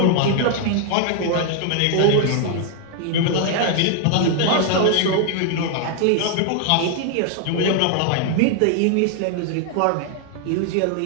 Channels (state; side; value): different; both; correlation 0.00